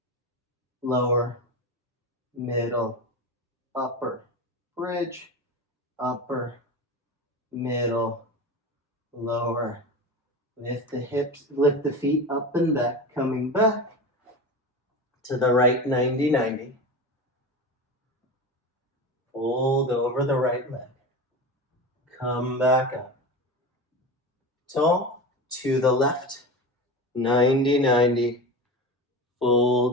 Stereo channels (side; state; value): both; normal; correlation 0.26